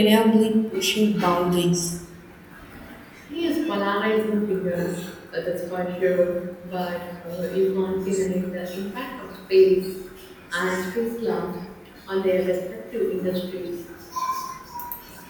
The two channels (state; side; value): identical; both; correlation 1.00